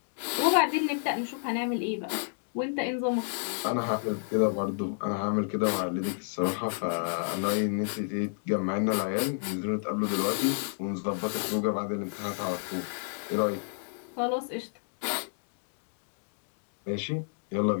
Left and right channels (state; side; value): silent; right; digital silence